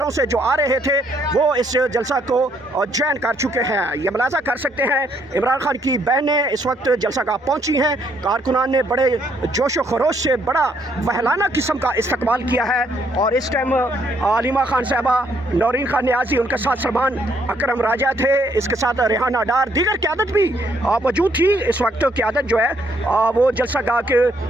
से जो आ रहे थे वो इस जलसा को ज्वाइन कर चुके हैं। ये मुलाजा कर सकते हैं इमरान खान की बहनें इस वक्त जलसागाह पहुंची हैं। कारकुनान ने बड़े जोश व खरोश से बड़ा वहलाना किस्म का इस्तकबाल किया है और इस टाइम अलीमा खान साहबा, नौरीन खान न्याजी, उनके साथ सलमान अकरम राजा थे, इसके साथ रेहाना डार, दीगर क़यादत भी मौजूद थी। इस वक्त क़यादत जो है वो जलसागाह के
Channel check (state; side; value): normal; both; correlation 0.70